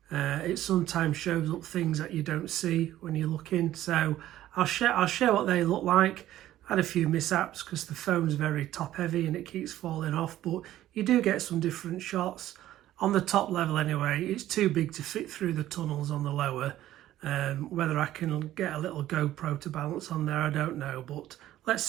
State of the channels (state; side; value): quieter; left; 13.6 dB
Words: It sometimes shows up things that you don't see when you're looking, so I'll share what they look like. I had a few mishaps because the phone's very top heavy and it keeps falling off, but you do get some different shots. On the top level anyway, it's too big to fit through the tunnels on the lower. Whether I can get a little GoPro to balance on there, I don't know, but let's